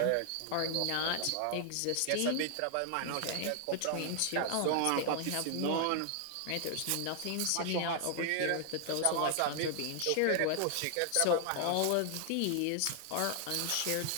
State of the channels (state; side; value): different; both; correlation 0.00